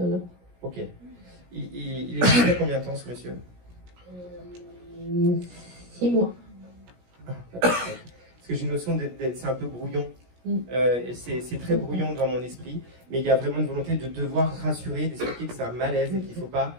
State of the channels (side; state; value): left; late; 17 ms